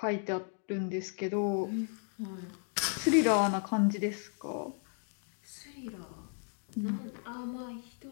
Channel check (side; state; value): right; silent; 55 dB below the other